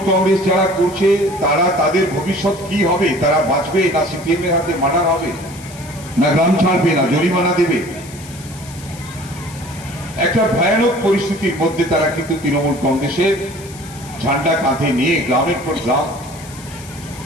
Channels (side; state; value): left; noise; hiss, 19 dB below the sound